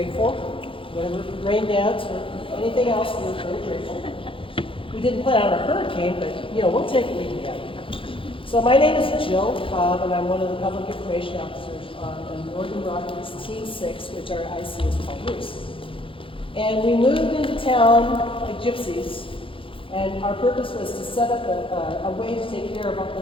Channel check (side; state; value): right; late; 0.25 ms